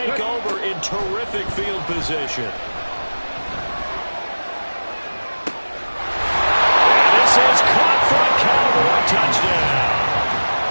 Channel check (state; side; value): inverted; both; correlation -1.00